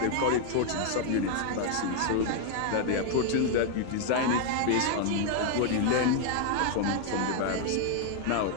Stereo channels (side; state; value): both; different; correlation 0.00